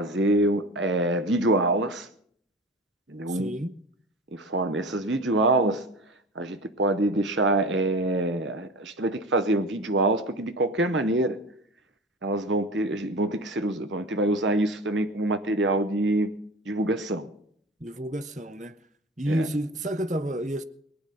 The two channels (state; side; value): normal; both; correlation 0.34